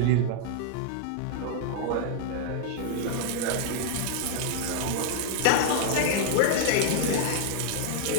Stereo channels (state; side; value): different; both; correlation -0.01